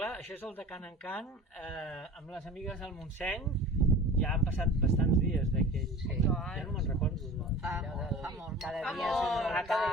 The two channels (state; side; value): normal; both; correlation 0.38